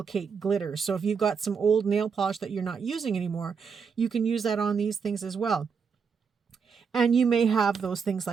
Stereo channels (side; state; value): left; quieter; 6.0 dB